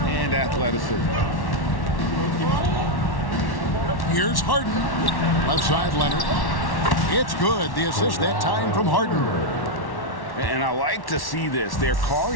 and athleticism. Here's Harden. Left side, Leonard. It's good. The assist that time from Harden. And I like to see this. They're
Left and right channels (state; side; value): late; right; 1.1 ms